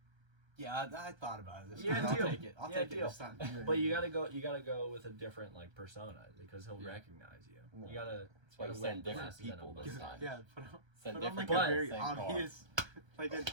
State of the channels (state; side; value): late; left; 1.3 ms